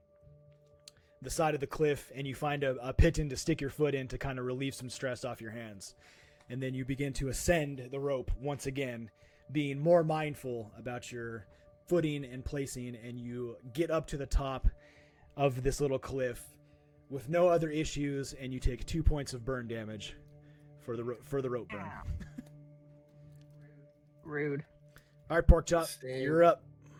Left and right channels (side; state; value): both; identical; correlation 1.00